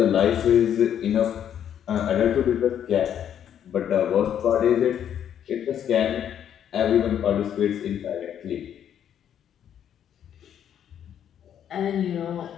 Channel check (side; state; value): right; quieter; 9.5 dB